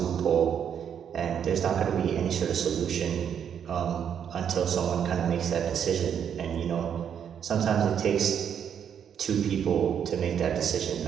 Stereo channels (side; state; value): left; quieter; 8.3 dB